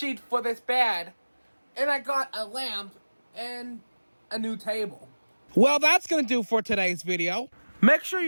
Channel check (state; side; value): inverted; both; correlation -1.00